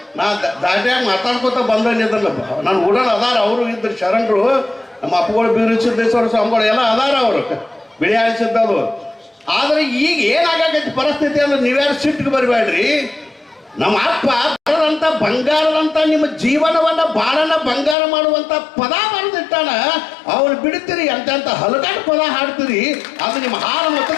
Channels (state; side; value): drops out; right; at 17.9 s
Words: ನಾ ದಾಟ್ಯಾಗ ಮಾತಾಡ್ಕೊತ ಬಂದಿದ್ದಲ್ಲ, ನಾನು ಉಡಲ್ ಅದಾರ, ಅವರು ಇದ್ರು ಶರಣರು, ನಮ್ಮ ಅಪ್ಪಗಳು ಬೀರು ಸಿದ್ದೇಶ್ವರ ಸ್ವಾಮಿಗಳು ಎಲ್ಲ ಅದಾರ, ಅವರು ಬಿಳಿ ಆಳಿಸಿದ್ದದು. ಆದ್ರೆ ಈಗ ಏನಾಗೈತಿ ಪರಿಸ್ಥಿತಿ ಅಂದ್ರೆ ನೀವ್ಯಾರು ಸಿಟ್ಟಿಗೆ ಬರಬೇಡ್ರಿ. ನಮ್ಮ ಅಪ್ಪ ಬರದಂತ ಬಂಗಾರದಂತ ನಿಮ್ಮ ಜೀವನವನ್ನ ಬಾಳನ್ನ ಬಂಗಾರ ಮಾಡುವಂತ ಪದ ಬರೆದಿಟ್ಟಾನ. ಅವ್ರು ಬಿಡ್ತೀರಿ, ಎಂತ ಹಲಗಾಟ ಪದ ಹಾಡ್ತೀರಿ, ಅದು ನಿಮ್ಮ ಹಾಲು